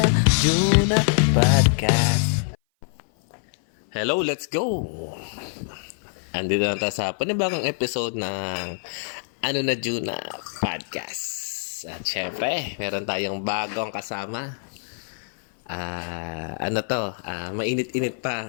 Juna Podcast. Hello, let's go! Andito na tayo sa panibagong episode ng Juna Podcast. At syempre, meron tayong bagong kasama. Mainit-init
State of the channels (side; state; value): right; silent; 57 dB below the other